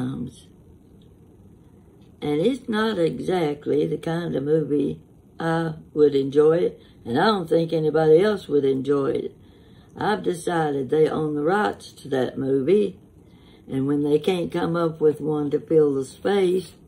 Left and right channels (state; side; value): identical; both; correlation 1.00